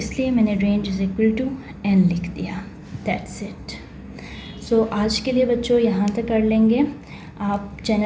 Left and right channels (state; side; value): identical; both; correlation 1.00